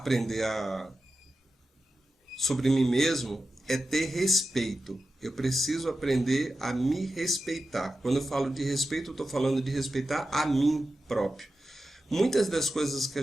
sobre mim mesmo é ter respeito. Eu preciso aprender a me respeitar. Quando eu falo de respeito, eu estou falando de respeitar a mim próprio. Muitas das coisas que a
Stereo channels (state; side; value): normal; both; correlation 0.92